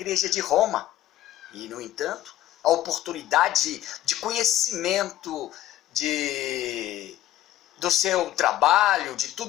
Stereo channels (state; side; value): quieter; right; 13.4 dB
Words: de Roma. E, no entanto, a oportunidade de conhecimento do seu trabalho, de